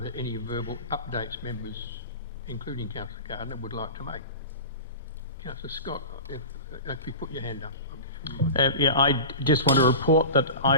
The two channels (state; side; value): inverted; both; correlation -0.32